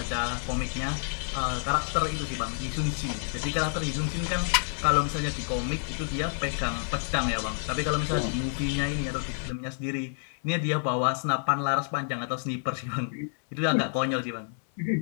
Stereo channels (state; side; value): silent; right; 59 dB below the other